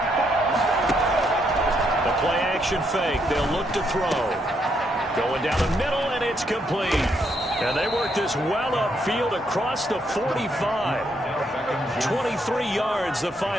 The play action fake. They'll look to throw. Going down the middle, and it's complete. And they work this well upfield across the 45. 23 yards, the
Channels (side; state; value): both; normal; correlation 0.75